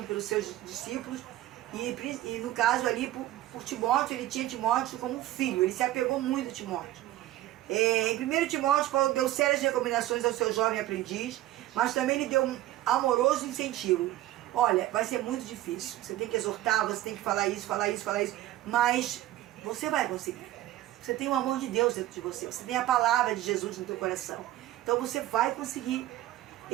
pelos seus discípulos e no caso ali por Timóteo, ele tinha Timóteo como um filho, ele se apegou muito a Timóteo. Em 1 Timóteo, Paulo deu sérias recomendações ao seu jovem aprendiz, mas também lhe deu um amoroso incentivo. Olha, vai ser muito difícil, você tem que exortar, você tem que falar isso, mas você vai conseguir. Você tem o amor de Deus dentro de você, você tem a palavra de Jesus no teu coração. Então você vai conseguir.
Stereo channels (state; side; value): quieter; left; 14.8 dB